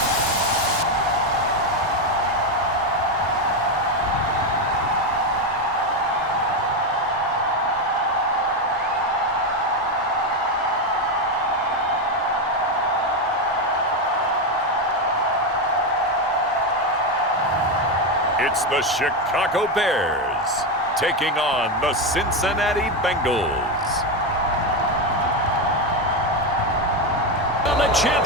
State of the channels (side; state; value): both; normal; correlation 0.10